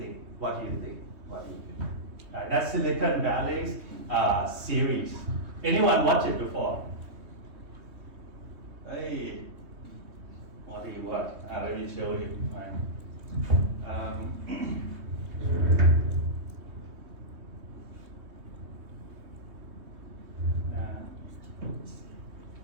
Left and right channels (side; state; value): left; late; 3.2 ms